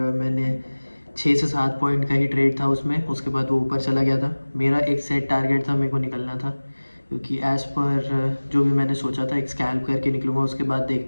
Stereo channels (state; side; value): inverted; both; correlation -1.00